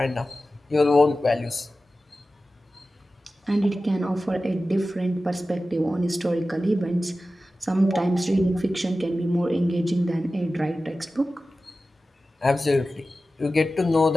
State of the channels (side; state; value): both; normal; correlation 0.95